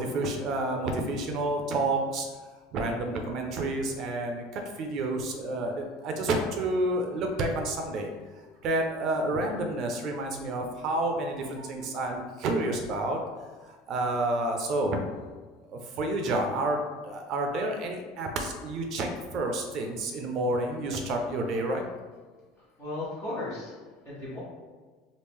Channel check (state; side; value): normal; both; correlation 0.41